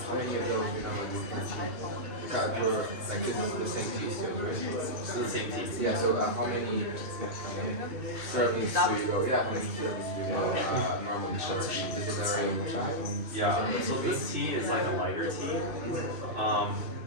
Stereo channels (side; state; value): left; late; 3.3 ms